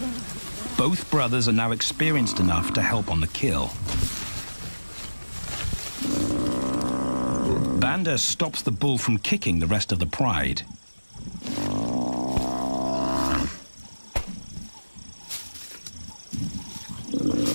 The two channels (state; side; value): inverted; both; correlation -1.00